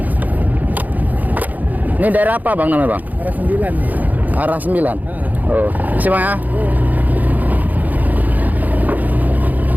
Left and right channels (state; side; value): late; left; 0.081 ms